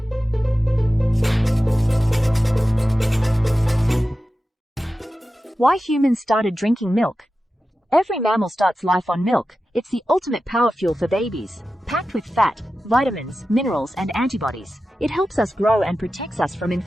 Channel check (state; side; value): normal; both; correlation 0.93